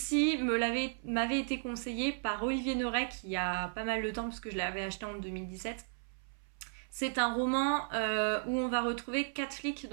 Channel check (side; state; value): left; silent; 55 dB below the other